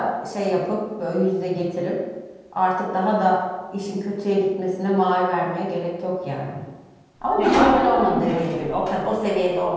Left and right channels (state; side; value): identical; both; correlation 1.00